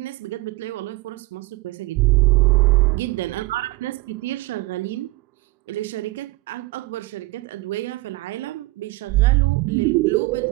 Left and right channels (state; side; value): quieter; left; 20.2 dB